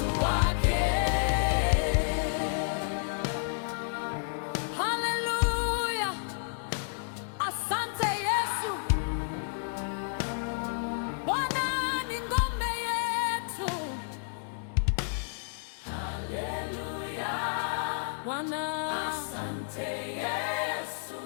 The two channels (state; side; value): silent; right; digital silence